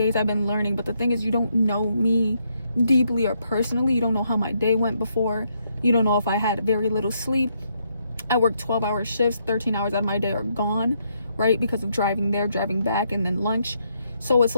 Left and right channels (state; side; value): inverted; both; correlation -0.76